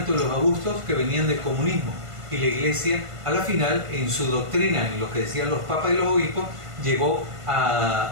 los abusos que venían del comunismo. Y la iglesia, a la final, en su doctrina, en lo que decían los papas y los obispos, llegó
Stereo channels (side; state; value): left; late; 1.5 ms